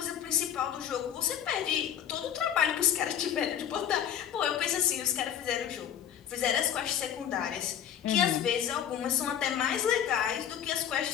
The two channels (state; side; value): quieter; right; 9.6 dB